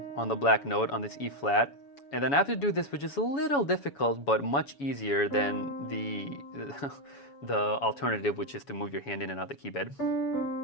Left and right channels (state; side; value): late; right; 7.1 ms